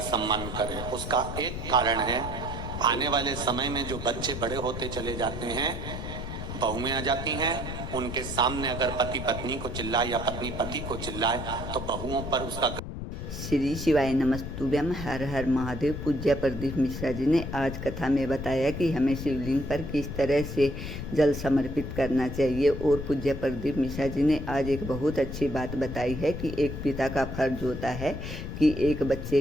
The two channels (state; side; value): noise; left; rumble, 7 dB below the sound